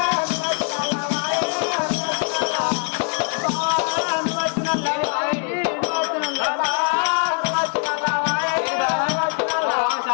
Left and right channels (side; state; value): right; quieter; 39.5 dB